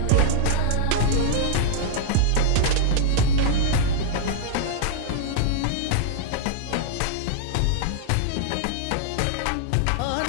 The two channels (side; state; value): both; different; correlation -0.01